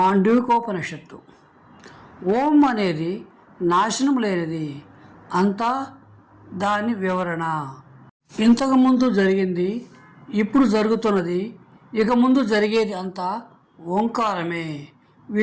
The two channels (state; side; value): identical; both; correlation 1.00